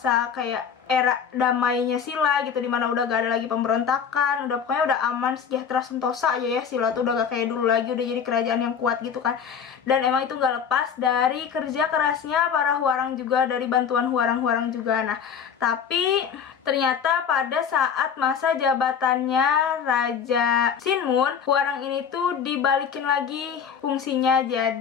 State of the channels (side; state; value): right; quieter; 7.3 dB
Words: kayak era damainya Silla gitu, dimana udah gak ada lagi pemberontakan, pokoknya udah aman, sejahtera, sentosa aja ya. Silla tuh udah gak kayak dulu lagi, udah jadi kerajaan yang kuat gitu kan. Dan emang itu gak lepas dari kerja kerasnya para Hwarang juga, dari bantuan Hwarang juga. Nah, tapi ternyata pada saat masa jabatannya Raja Sinmun, Hwarang ini tuh dibalikin lagi fungsinya